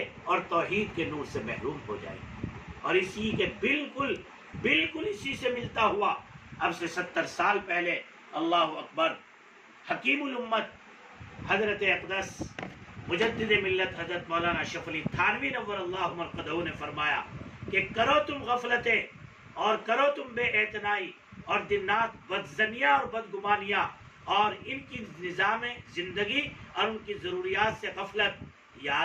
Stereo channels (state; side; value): identical; both; correlation 1.00